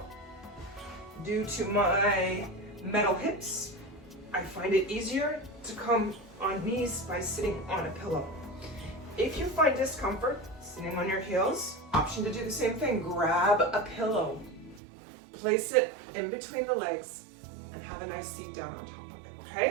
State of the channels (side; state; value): left; drops out; at 14.8 s